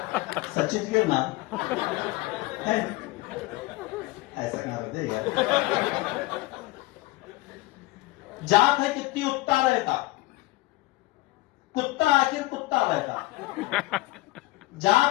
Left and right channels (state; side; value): quieter; right; 19.9 dB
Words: सचित गिरना है, ऐसा क्या होते यार? जात है कितनी उत्ता रहता, कुत्ता आखिर कुत्ता रहता।